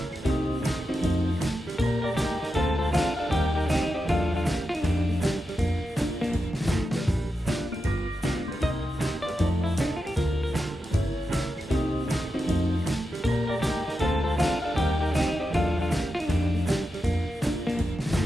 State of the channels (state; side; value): normal; both; correlation 0.88